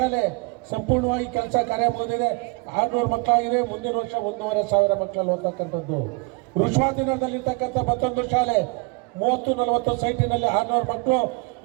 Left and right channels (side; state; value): left; quieter; 28.8 dB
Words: ಸಂಪೂರ್ಣವಾಗಿ ಕೆಲಸ ಕಾರ್ಯ ಮುಗಿದಿದೆ, 600 ಮಕ್ಕಳಾಗಿದೆ. ಮುಂದಿನ ವರ್ಷ 1,500 ಮಕ್ಕಳಲ್ಲಿ ಓದ್ತಕ್ಕಂಥದ್ದು. ಋಷವಾದಿನಗರದಲ್ಲಿರ್ತಕ್ಕಂಥ ಮತ್ತೊಂದು ಶಾಲೆ 30-40 ಸೈಟಿನಲ್ಲಿ 600 ಮಕ್ಕಳು